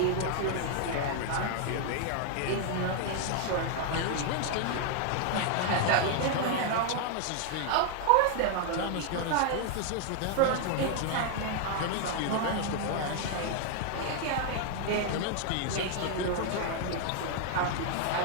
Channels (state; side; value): different; both; correlation 0.00